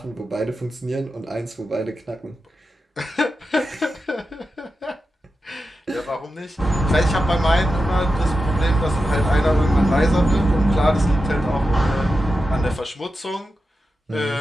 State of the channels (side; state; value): both; normal; correlation 0.90